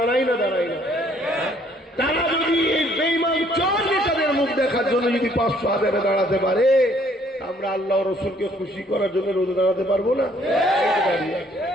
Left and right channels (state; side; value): normal; both; correlation 0.63